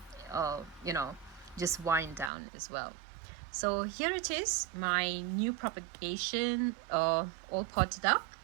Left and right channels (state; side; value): drops out; left; at 2.3 s